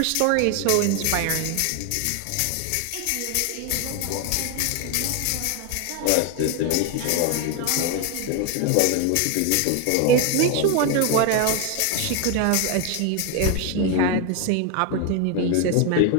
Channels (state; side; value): different; both; correlation 0.01